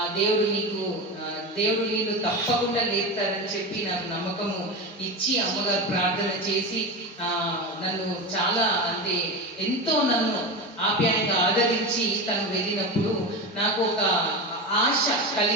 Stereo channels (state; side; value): normal; both; correlation 0.22